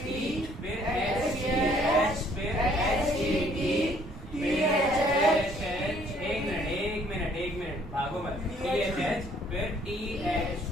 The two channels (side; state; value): both; normal; correlation 0.62